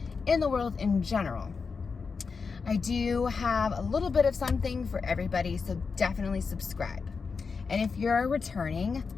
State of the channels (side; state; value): right; quieter; 5.1 dB